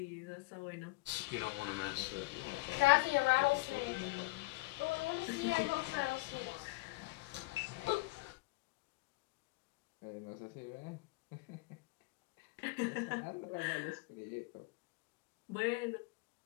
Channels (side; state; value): right; quieter; 22.5 dB